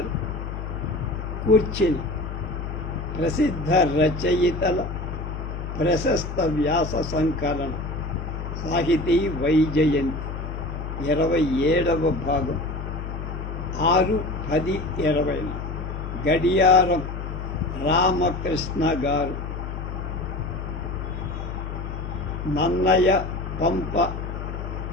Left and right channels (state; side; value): noise; left; hum, 6 dB below the sound